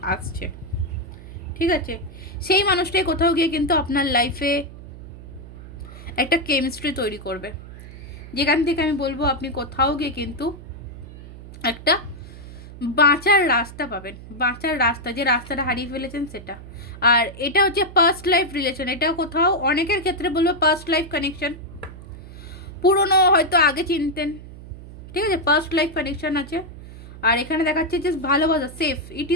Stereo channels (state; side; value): noise; right; hum, 15 dB below the sound